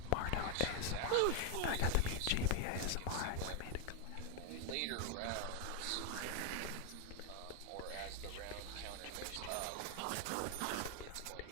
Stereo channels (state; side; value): different; both; correlation 0.01